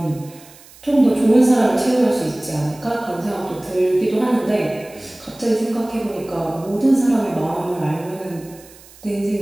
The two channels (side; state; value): right; noise; hiss, 23 dB below the sound